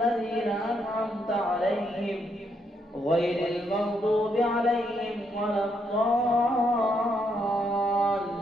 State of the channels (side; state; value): both; normal; correlation 0.76